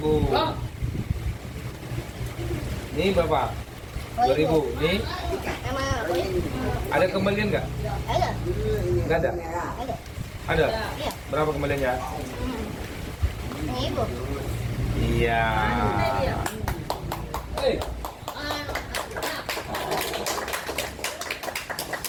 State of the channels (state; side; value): identical; both; correlation 1.00